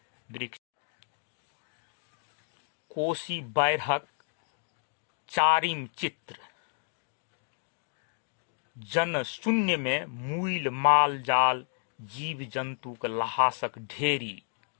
वृक्ष कोसी बाढ़िक चारिम चित्र। जन शून्य में मूल माल जाल, जीव जंतुक ल्हासक ढेरी।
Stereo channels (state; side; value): silent; right; digital silence